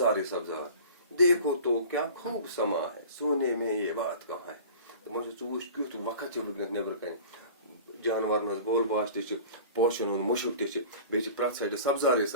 سبزار. دیکھو تو کیا خوب سما ہے سونے میں یہ بات کہاں ہے دپان ژٕ وٕچھ کیُتھ وقت چھُ وٕنکیٚنس نیبرٕ کنہِ جانورن ہٕنٛز بول باش تہِ چھِ پوشن ہُنٛد مُشُک تہِ چھِ بیٚیہِ چھِ پرٛٮ۪تھ سایڈٕ سبزارٕے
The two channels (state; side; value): inverted; both; correlation -0.41